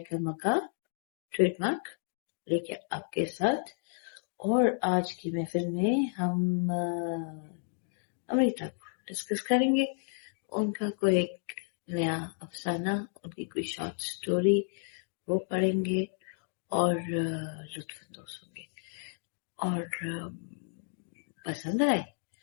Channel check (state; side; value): silent; right; digital silence